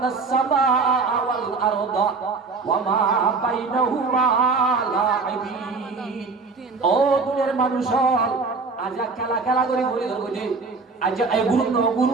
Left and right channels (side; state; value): left; quieter; 4.3 dB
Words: সামাআ ওয়াল আরদা ওয়া মা বাইনাহুমা লাইবিন, ও দুনিয়ার মানুষ আজ খেলা খেলা করে ঘুরে ধরবো যে আজ এই গুরু